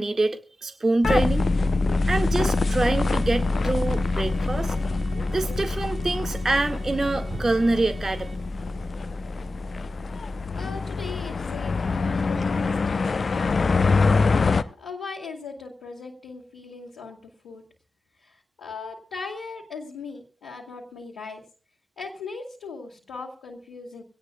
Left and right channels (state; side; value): normal; both; correlation 0.93